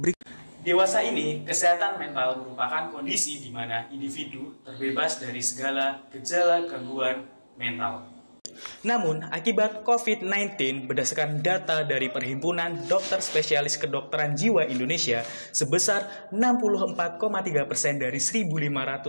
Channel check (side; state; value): both; inverted; correlation -1.00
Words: Dewasa ini, kesehatan mental merupakan kondisi di mana individu terbebas dari segala gejala gangguan mental. Namun, akibat COVID-19, berdasarkan data dari Perhimpunan Dokter Spesialis Kedokteran Jiwa Indonesia, sebesar 64,3% dari